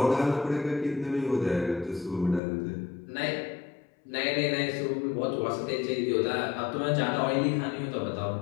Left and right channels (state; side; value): drops out; right; at 2.4 s